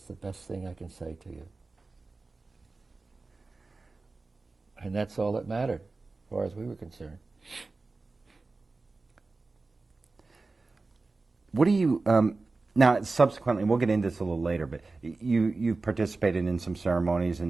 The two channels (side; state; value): left; quieter; 3.6 dB